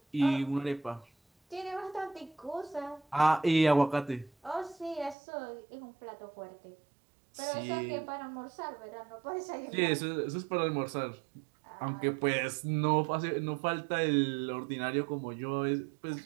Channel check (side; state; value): left; drops out; at 5.2 s